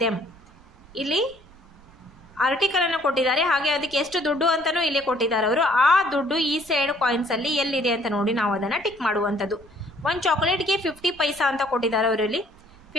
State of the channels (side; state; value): right; noise; rumble, 25 dB below the sound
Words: them. ಇಲ್ಲಿ ಆರ್ಟಿಕಲನ್ನು ಕೊಟ್ಟಿದ್ದಾರೆ, ಹಾಗೆ ಅದಕ್ಕೆ ಎಷ್ಟು ದುಡ್ಡು ಅಂತಲೂ ಇಲ್ಲಿ ಕೊಟ್ಟಿದ್ದಾರೆ ಅವರು. ಆ ದುಡ್ಡು ಈ ಸೈಡ್ ಕಾಯಿನ್ಸಲ್ಲಿ ಎಲ್ಲಿದೆ ಅಂತ ನೋಡಿ ನಾವು ಅದನ್ನು ಟಿಕ್ ಮಾಡುವಂಥದ್ದು. ಒಂದು ಚಾಕ್ಲೇಟ್ಗೆ 50 ಪೈಸಾ ಅಂತ ಕೊಟ್ಟಿದ್ದಾರೆ ಅವರು. ಇಲ್ಲಿ